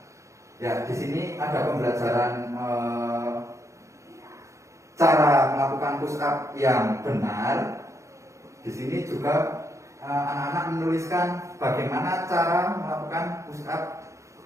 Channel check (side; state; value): left; late; 0.15 ms